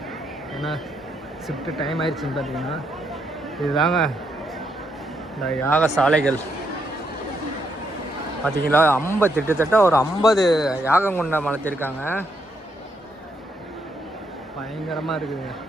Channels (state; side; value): normal; both; correlation 0.77